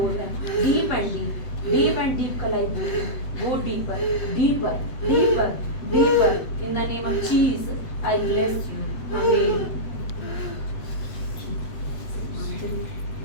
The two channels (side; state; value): right; late; 8.0 ms